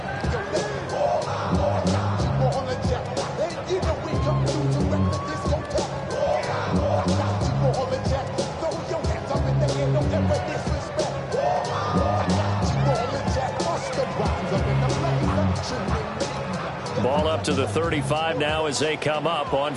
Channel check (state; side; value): identical; both; correlation 1.00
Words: Ball up to the 35 now as they come up on